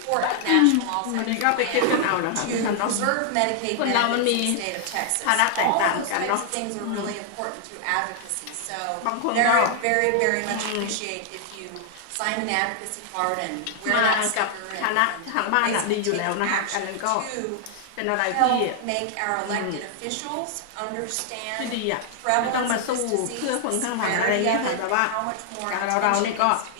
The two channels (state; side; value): different; both; correlation 0.00